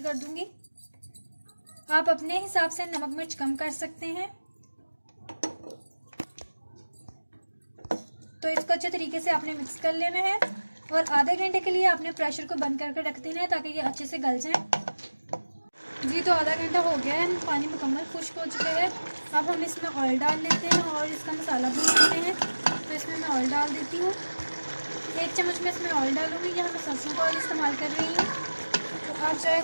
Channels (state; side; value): inverted; both; correlation -1.00